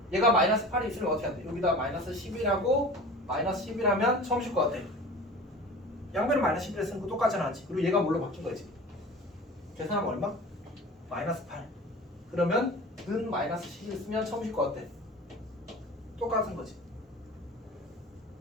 얘가 마이너스 8이 있으면 어떻게 한대? 여기다 마이너스 11하고 마이너스 11하면 처음 실 거 같아. 양변을 마이너스 11에 쓰는 거 똑같잖아, 맞지? 그리고 얘가 뭘로 바뀐 거지? 계산하면 얼마? 마이너스 8. 그러면 는 마이너스 11 쓰면 처음 실 거 같아. 똑같은 거지.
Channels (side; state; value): both; normal; correlation 0.38